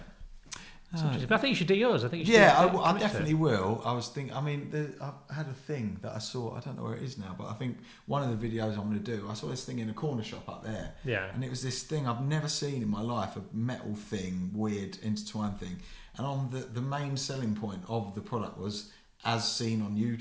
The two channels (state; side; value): identical; both; correlation 1.00